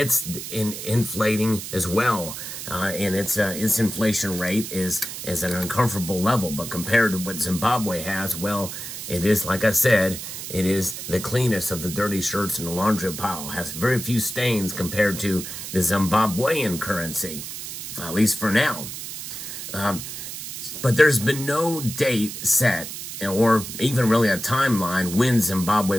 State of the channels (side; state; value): right; noise; hiss, 8 dB below the sound